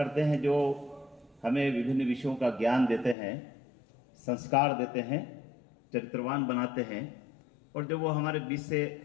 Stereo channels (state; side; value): drops out; right; at 3.2 s